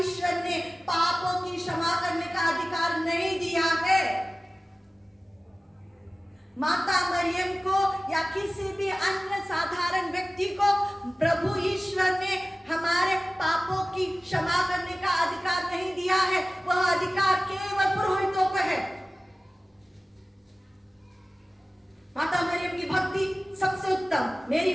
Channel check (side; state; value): both; normal; correlation 0.97